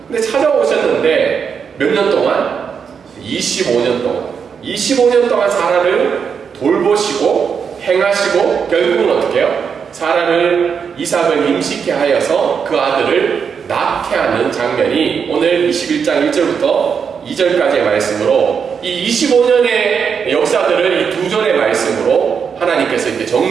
근데 찾아오셨는데 몇 년 동안? 25년 동안. 25년 동안 사라를 돌보시고 행하시고 결국은 어떻게 해요? 사라를 이삭을 임신케 하여서 그 아들을 낳게 하는 장면이 오늘 21장 1절부터 2절까지의 말씀으로, 이 25년의 역사들을 이 두 절의 말씀으로 하나님께서 이렇게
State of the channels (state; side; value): quieter; left; 6.6 dB